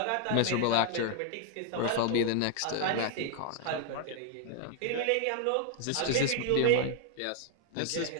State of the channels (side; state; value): both; different; correlation 0.00